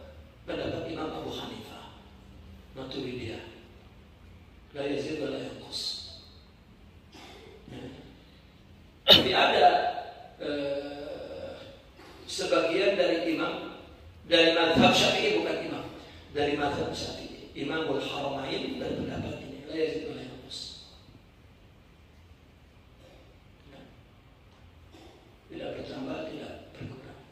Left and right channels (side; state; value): both; identical; correlation 1.00